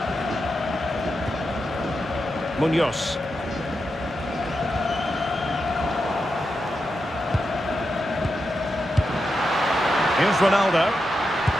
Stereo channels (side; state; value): both; normal; correlation 0.87